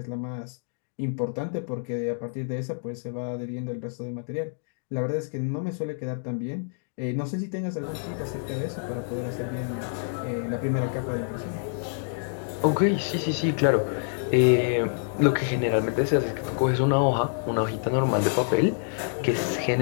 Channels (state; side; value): silent; right; digital silence